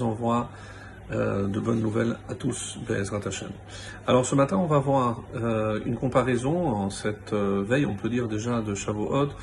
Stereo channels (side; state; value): both; identical; correlation 1.00